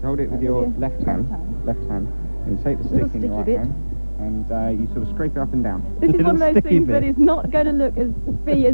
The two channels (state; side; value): inverted; both; correlation -1.00